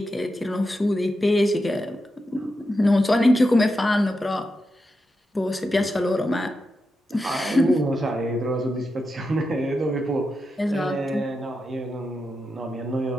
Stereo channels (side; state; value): both; normal; correlation 0.88